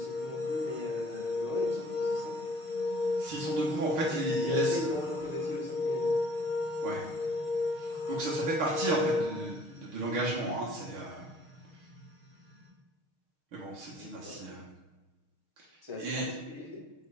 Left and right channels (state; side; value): late; left; 6.5 ms